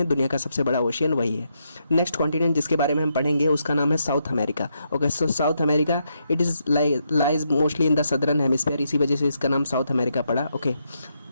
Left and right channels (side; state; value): both; inverted; correlation -0.80